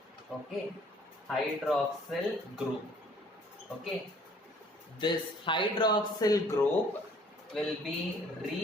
Okay, hydroxyl group. Okay, this hydroxyl group will be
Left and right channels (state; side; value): normal; both; correlation 0.57